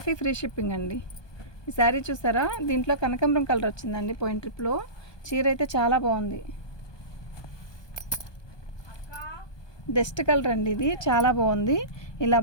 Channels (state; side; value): late; right; 1.2 ms